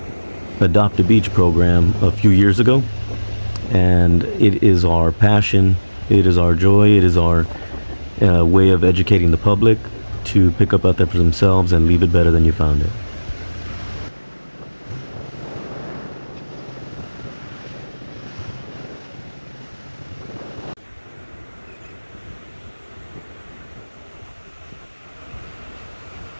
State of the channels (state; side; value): inverted; both; correlation -1.00